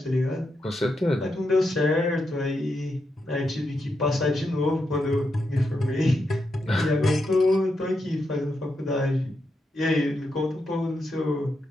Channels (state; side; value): normal; both; correlation 0.84